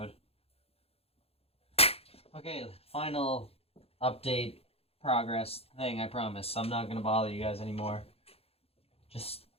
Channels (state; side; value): late; right; 0.29 ms